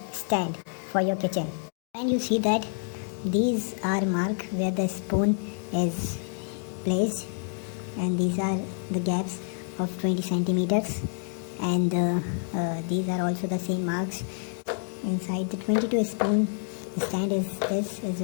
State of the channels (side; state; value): right; silent; 59 dB below the other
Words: stand for your kitchen, and you see that these are marked where the spoon is placed, and these are the gaps of 20 centimeters, and these are also the same marks inside the 22 spoon stand. This is